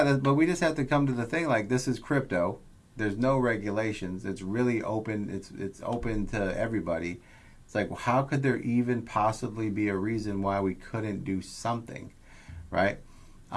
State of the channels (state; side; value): identical; both; correlation 1.00